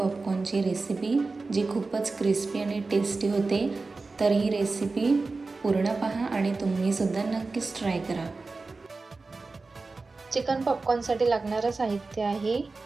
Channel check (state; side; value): quieter; left; 3.8 dB